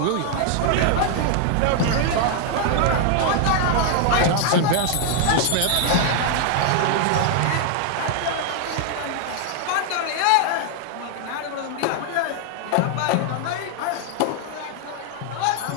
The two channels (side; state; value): both; different; correlation 0.00